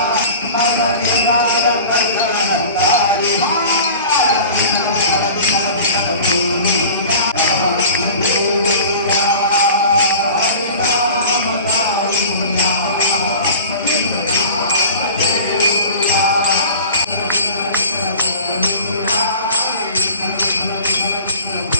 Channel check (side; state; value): both; inverted; correlation -0.40